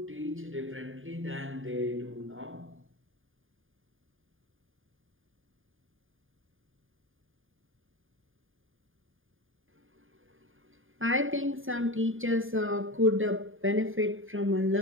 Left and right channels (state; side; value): late; left; 0.59 ms